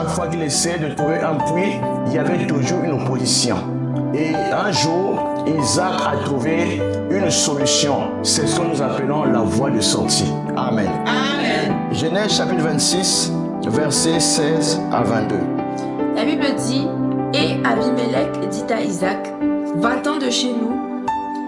fois qu'il essayait de trouver un puits, il y avait toujours une opposition. Et un jour, Isaac a trouvé une solution. C'est ce que nous appelons la voie de sortie. Amen. Amen. Genèse chapitre 26, versets 16 à 22. La Bible dit, et Abimelech dit à Isaac, va-t'en de chez nous,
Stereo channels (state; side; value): identical; both; correlation 1.00